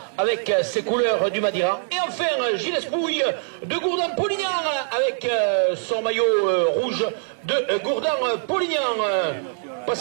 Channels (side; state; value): left; silent; digital silence